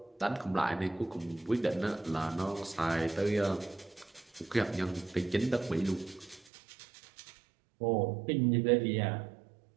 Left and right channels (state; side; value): drops out; left; at 6.5 s